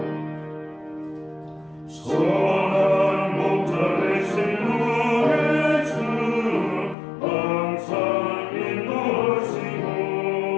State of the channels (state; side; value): drops out; right; at 7.0 s